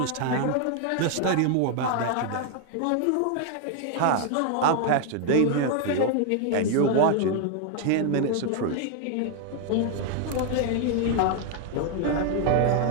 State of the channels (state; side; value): different; both; correlation 0.00